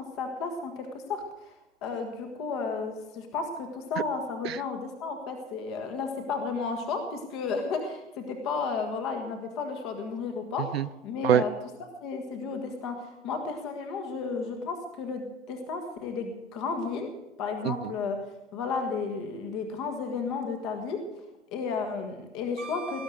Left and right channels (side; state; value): both; normal; correlation 0.39